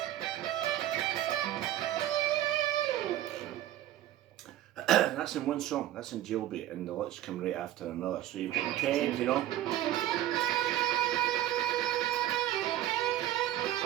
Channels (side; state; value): left; quieter; 13.4 dB